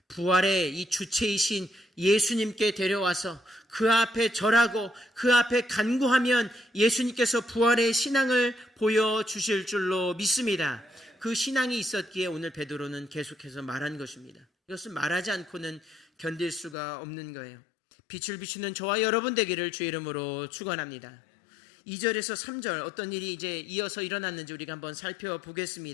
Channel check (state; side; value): drops out; right; at 16.8 s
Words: 부활의 이 주체이신 예수님께 데려와서 그 앞에 절하고 그 앞에 간구하면 예수님께서 부활의 신앙을 보여주실 줄로 믿습니다. 그 신앙이 있었기에 오늘 베드로는 계속해서 말한 것입니다. 이것은 말하지 않고는 견딜 수가 없는 거예요. 빛을 비추는 저와 여러분 되기를 주의 이름으로 축원합니다. 2절에서 3절 어떤 일이 이제 이어서 일어났는지 우리가 한번